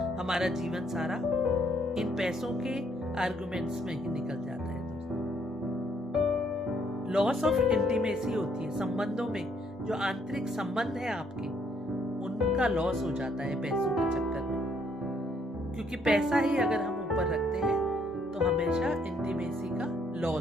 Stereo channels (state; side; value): normal; both; correlation 0.68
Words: हमारा जीवन सारा इन पैसों के आर्ग्यूमेंट्स में ही निकल जाता है दोस्तों। लॉस ऑफ इंटीमेसी होती है, संबंधों में जो आंतरिक संबंध है आपके, उनका लॉस हो जाता है पैसों के चक्कर में। क्योंकि पैसा ही अगर हम ऊपर रखते हैं तो हमेशा इंटीमेसी का